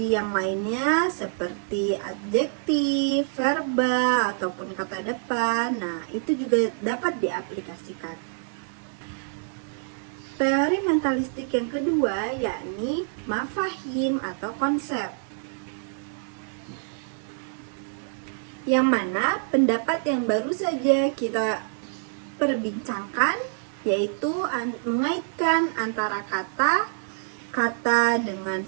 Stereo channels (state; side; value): silent; left; 61 dB below the other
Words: yang lainnya seperti adjektif, verba, ataupun kata depan, nah itu juga dapat diaplikasikan. Teori mentalistik yang kedua yakni mafahim atau konsep, yang mana pendapat yang baru saja kita perbincangkan yaitu mengaitkan antara kata dengan